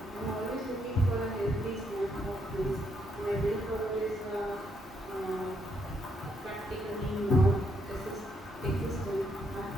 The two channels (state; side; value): normal; both; correlation 0.75